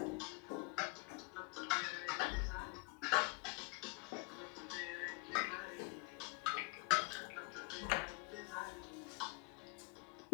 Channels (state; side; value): quieter; right; 30.5 dB